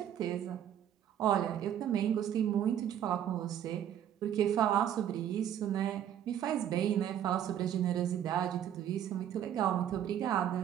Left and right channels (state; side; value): quieter; left; 10.2 dB